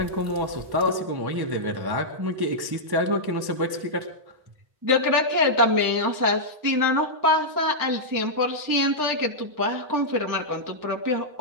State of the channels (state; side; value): late; left; 1.1 ms